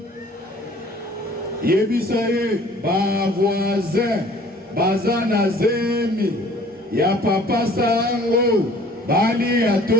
Yebisaye, ba voisin, bazana zemi, ya papa sango, bali ya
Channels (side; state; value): both; normal; correlation 0.52